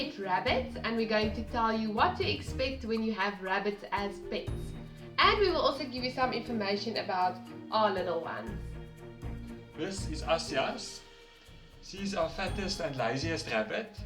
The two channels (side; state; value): both; identical; correlation 1.00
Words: rabbits, and we're going to tell you what to expect when you have rabbits as pets. And we will also give you some information about our little ones. This is Asjas. She's our fattest and laziest rabbit,